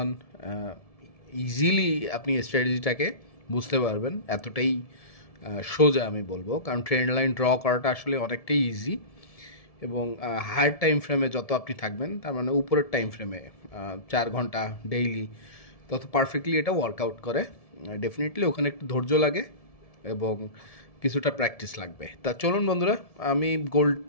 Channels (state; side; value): late; right; 1.7 ms